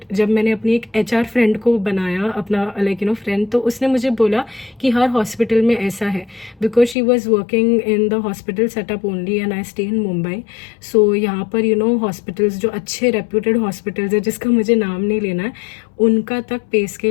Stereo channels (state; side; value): drops out; right; at 7.0 s